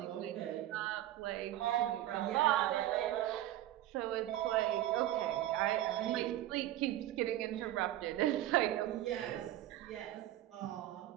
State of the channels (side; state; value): left; quieter; 13.9 dB